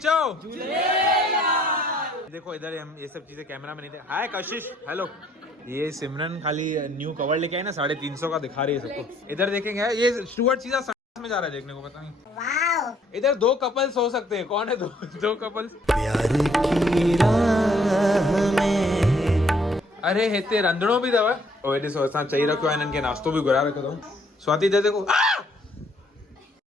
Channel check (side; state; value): both; normal; correlation 0.65